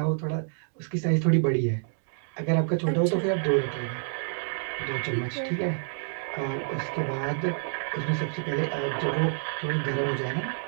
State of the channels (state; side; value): silent; left; digital silence